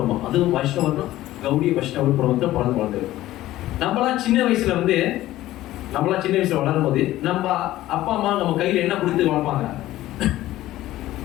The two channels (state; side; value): quieter; right; 15.3 dB